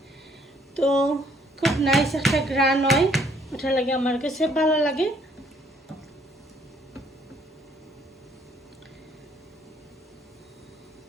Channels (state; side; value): normal; both; correlation 0.64